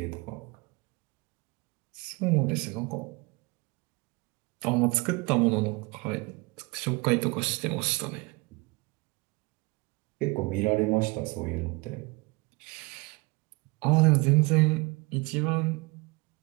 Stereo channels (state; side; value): quieter; left; 26.3 dB